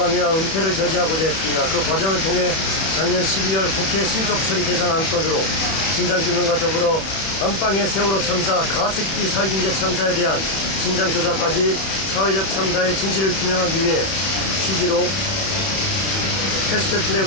은폐를 저지하고자 했습니다. 그 과정을 통해 작년 12월 국회 신속처리 대상 안건으로 진상규명과 더불어 안방의 세월호 참사, 가습기 살균제 참사에 대한 진상조사까지 사회적 참사의 진실을 규명하기 위해 취지로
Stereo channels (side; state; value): right; late; 31 ms